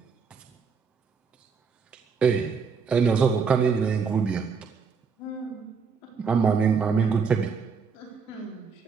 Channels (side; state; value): left; quieter; 5.7 dB